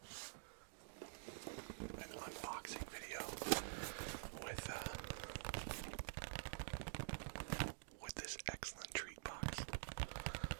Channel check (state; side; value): silent; left; digital silence